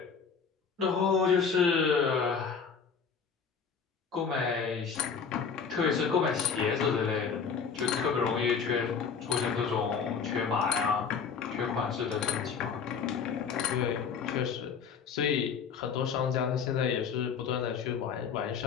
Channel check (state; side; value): quieter; right; 6.2 dB